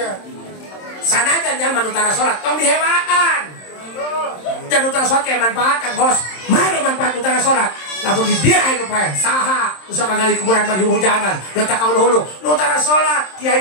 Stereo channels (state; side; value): late; right; 27 ms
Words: Sanajan jangan utara sholat, tong dihewaan. Dan utara sholat kayak manfaatkan, Bos. Mana manfaat utara sholat? Namun di dia itu pak, saha, usah kagak di kuburan bagi hujanan, letak kau dulu, utara sholat, kiai